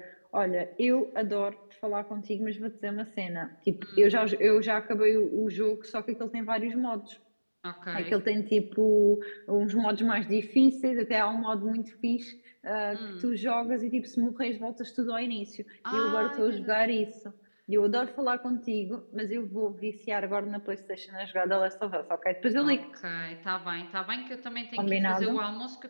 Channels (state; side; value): inverted; both; correlation -1.00